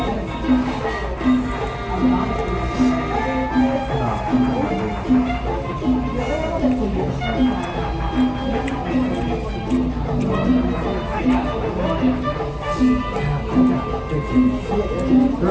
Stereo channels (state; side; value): identical; both; correlation 1.00